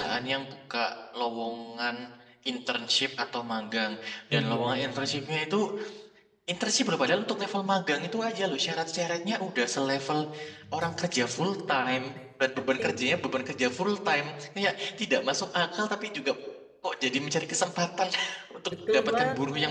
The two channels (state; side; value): identical; both; correlation 1.00